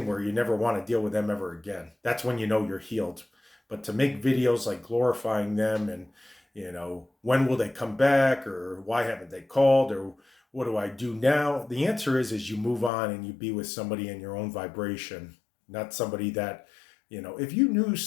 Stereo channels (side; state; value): right; drops out; at 12.9 s